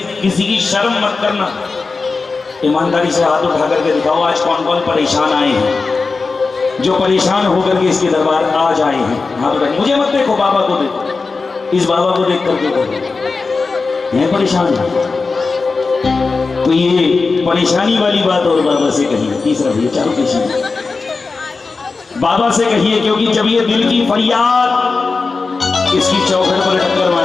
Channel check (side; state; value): right; quieter; 4.2 dB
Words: किसी की शर्म मत करना, ईमानदारी से हाथ उठा करके दिखाओ आज कौन कौन परेशान आए हैं, जो परेशान होकर के इसके दरबार आज आए हैं। हाथ उठा, मुझे मत देखो, बाबा को देखो, इस बाबा को देख करके देखो, ये परेशान है। तो ये परेशानी वाली बात और बाबा से कहिए। तीसरा भैया, चारों पेशी बाबा से कहिए, क्योंकि जब ये दिल की फरियाद इसकी चौखट पर टक्कर